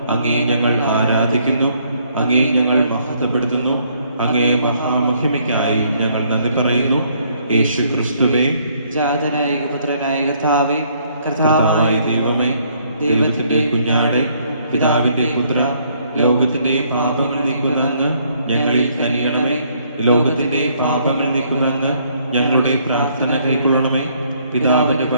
അങ്ങേ ഞങ്ങൾ ആരാധിക്കുന്നു, അങ്ങേ ഞങ്ങൾ മഹത്വപ്പെടുത്തുന്നു. അങ്ങേ മഹാമഹിമയ്ക്കായി ഞങ്ങൾ നന്ദി പറയുന്നു. യേശു ക്രിസ്തുവേ, ജാതനായ പുത്രനായ കർത്താവേ, കർത്താവായ ദൈവമേ, ദൈവത്തിന്റെ കുഞ്ഞാടെ, പിതാവിന്റെ പുത്ര, ലോകത്തിന്റെ പാപങ്ങൾ നീക്കുന്ന അങ്ങ് ഞങ്ങളിൽ കനിയണമേ. ലോകത്തിന്റെ പാപങ്ങൾ നീക്കുന്ന അങ്ങ് ഞങ്ങളുടെ പ്രാർത്ഥന കൈക്കൊള്ളണമേ. പിതാവിന്റെ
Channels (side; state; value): both; inverted; correlation -0.67